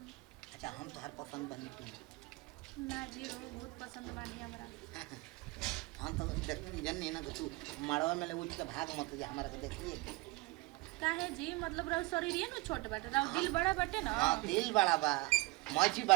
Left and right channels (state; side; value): quieter; left; 22.6 dB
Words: अच्छा हम तो हर पसंद बनी तू ना जी वो बहुत पसंद बानी हमरा हम तो जन नहीं ना कि तू मड़वा में ले उठ के भाग मत जा हमारा के देखिए काहे जी मतलब रहो शरीर न छोट बाटे रहो दिल बड़ा बाटे ना हाँ दिल बड़ा बा मौजी